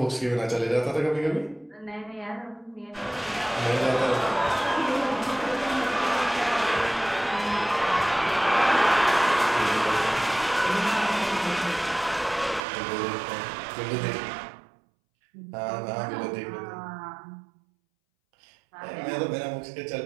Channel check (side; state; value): left; drops out; at 12.6 s